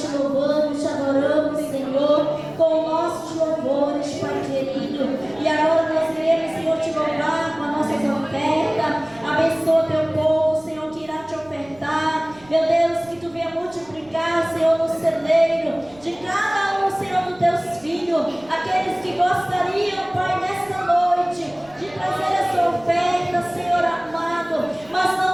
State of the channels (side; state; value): right; noise; rumble, 27 dB below the sound